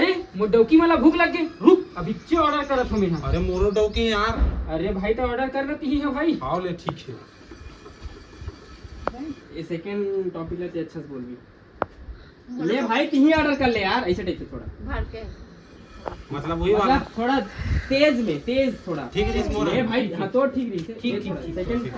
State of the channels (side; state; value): both; identical; correlation 1.00